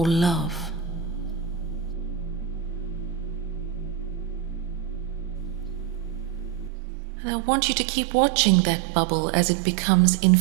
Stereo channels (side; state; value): left; drops out; at 6.7 s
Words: love. And I want you to keep watching that bubble as it becomes